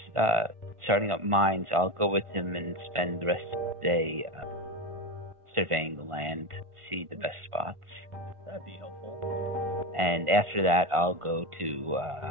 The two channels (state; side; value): late; left; 1.5 ms